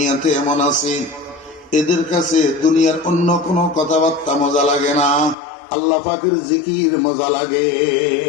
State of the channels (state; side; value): drops out; right; at 5.4 s